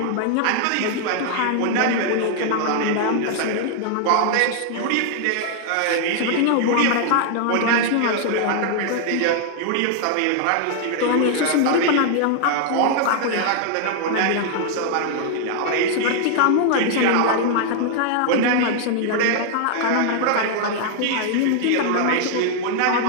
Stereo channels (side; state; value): both; different; correlation 0.00